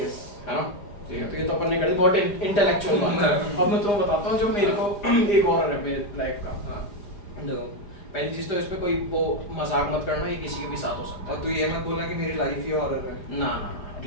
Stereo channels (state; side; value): late; right; 4.9 ms